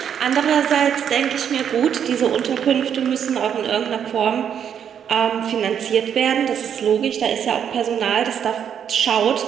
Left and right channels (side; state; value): left; quieter; 8.5 dB